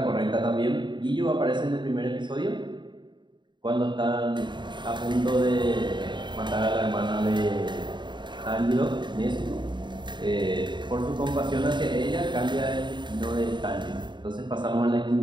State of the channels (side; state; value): left; late; 0.22 ms